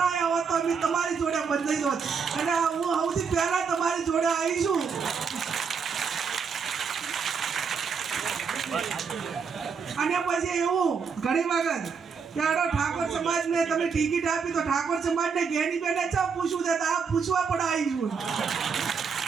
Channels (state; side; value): quieter; left; 5.8 dB